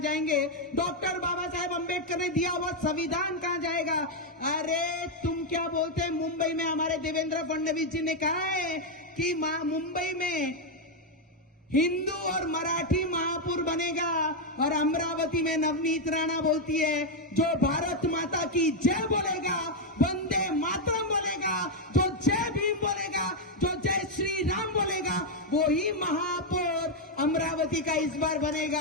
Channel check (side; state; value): both; normal; correlation 0.01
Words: जाएंगे? डॉक्टर बाबा साहेब अम्बेडकर ने दिया हुआ संविधान कहां जाएगा? अरे तुम क्या बोलते हैं? मुंबई में हमारे देवेंद्र फडणवीस जी ने कहा है कि मुंबई में हिंदू और मराठी महापुर बनेगा। और अमरावती में नवनीत राणा बोलती है जो भारत माता की जय बोलेगा, वंदे मातरम बोलेगा, जो जय भीम बोलेगा, जो जय श्री राम बोलेगा, वो ही महापौर अमरावती का इस बार